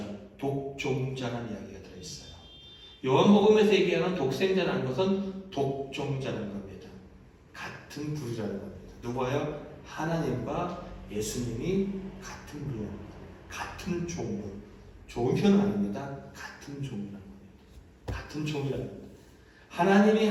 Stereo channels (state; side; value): identical; both; correlation 1.00